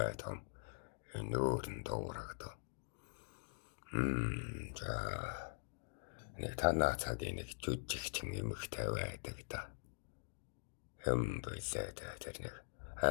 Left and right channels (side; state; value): right; silent; digital silence